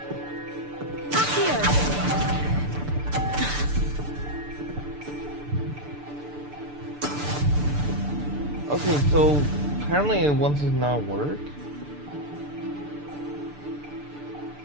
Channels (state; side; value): late; left; 6.8 ms